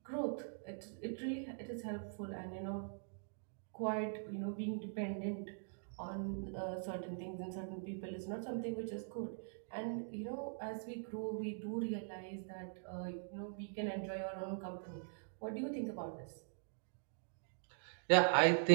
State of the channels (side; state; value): left; silent; digital silence